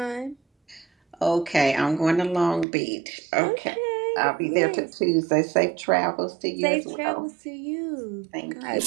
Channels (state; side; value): drops out; left; at 2.7 s